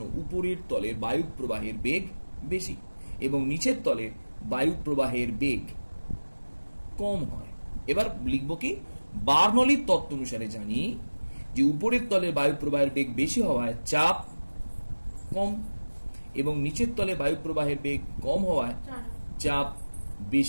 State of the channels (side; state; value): both; inverted; correlation -1.00